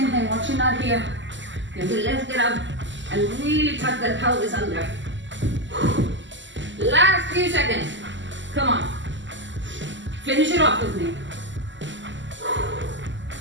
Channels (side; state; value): left; late; 0.54 ms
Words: thing. Watch you not here. You have to lift it up and really tuck that pelvis under. Last few seconds. Come on. Finish it off with me.